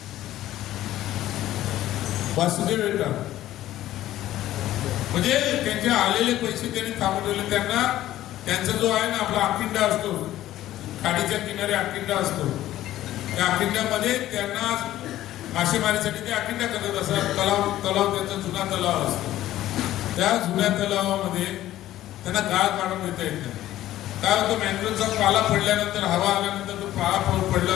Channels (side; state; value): right; quieter; 14.0 dB